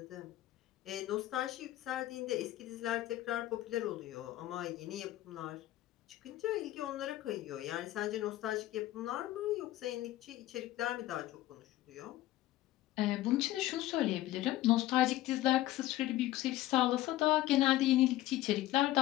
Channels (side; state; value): right; quieter; 15.4 dB